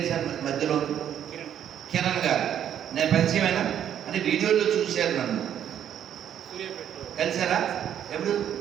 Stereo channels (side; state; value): left; quieter; 9.8 dB